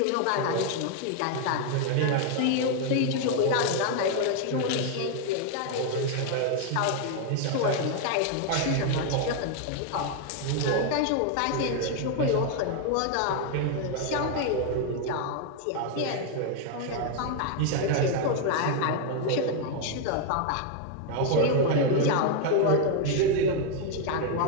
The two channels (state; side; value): different; both; correlation 0.00